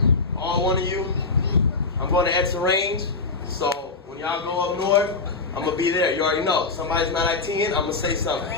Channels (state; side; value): quieter; right; 4.0 dB